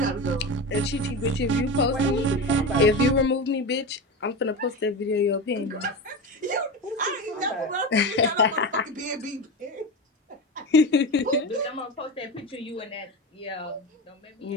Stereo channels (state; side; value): normal; both; correlation 0.23